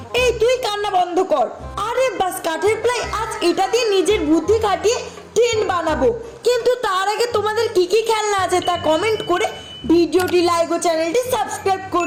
এই তুই কান্না বন্ধ কর। আরে বাস, কাঠের প্লাই আজ এটা দিয়ে নিজের বুদ্ধি খাটিয়ে ট্রেন বানাবো। কিন্তু তার আগে তোমাদের কি কি খেলনা আছে তা কমেন্ট করে ভিডিওটি লাইক ও চ্যানেলটি সাবস্ক্রাইব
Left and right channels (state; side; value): identical; both; correlation 1.00